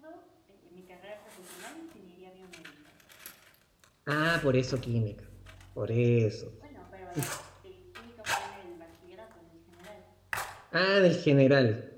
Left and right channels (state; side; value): identical; both; correlation 1.00